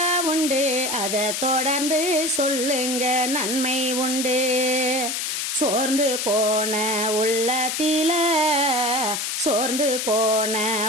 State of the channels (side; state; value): left; noise; hiss, 2 dB below the sound